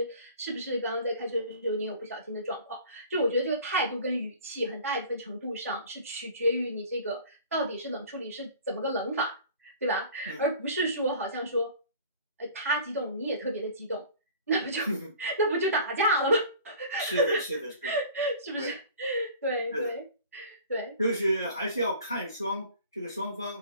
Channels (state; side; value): inverted; both; correlation -0.45